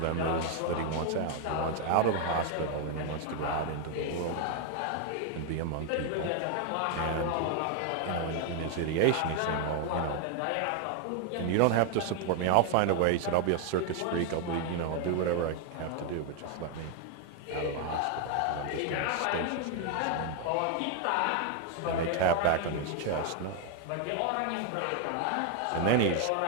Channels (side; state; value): both; different; correlation 0.01